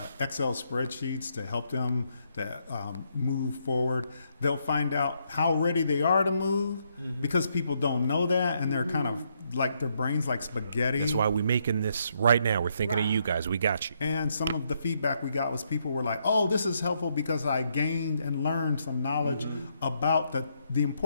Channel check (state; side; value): inverted; both; correlation -0.75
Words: Excel spreadsheets to help them to move forward. They'll find out how ready they are to move because people don't know that, and they're kind of like their brains like spaghetti. That's why we're making this right now. We're thinking of you guys. We got you. And some of the feedback we got was people were like, oh, this is helpful because I gained and learned some knowledge about the